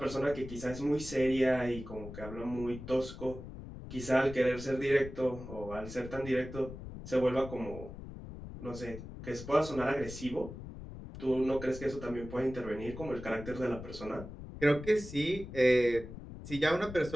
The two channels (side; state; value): left; noise; rumble, 12 dB below the sound